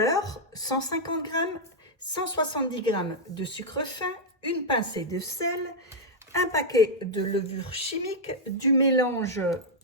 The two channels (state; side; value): normal; both; correlation -0.04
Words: 150 g, 170 g de sucre fin, une pincée de sel, un paquet de levure chimique, du mélange